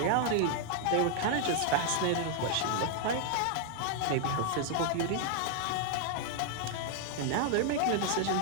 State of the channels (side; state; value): both; different; correlation 0.00